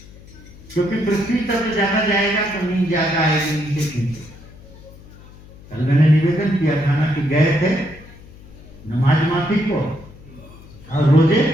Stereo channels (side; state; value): left; noise; hum, 20 dB below the sound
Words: क्योंकि पृथ्वी तक जाना जाएगा तो नींद ज्यादा आएगी नीचे खींचे। कल मैंने निवेदन किया था ना कि गए थे नमाज माफी को और रोजे